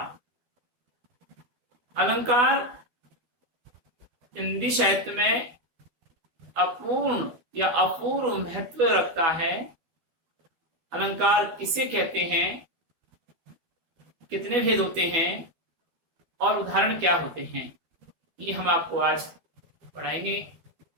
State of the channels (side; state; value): left; late; 12 ms